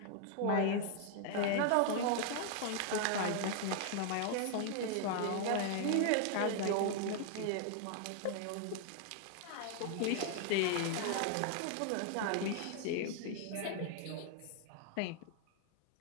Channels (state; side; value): different; both; correlation 0.00